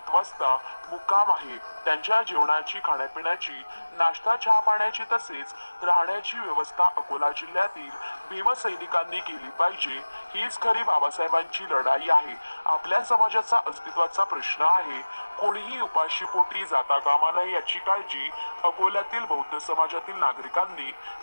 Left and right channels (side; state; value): both; inverted; correlation -1.00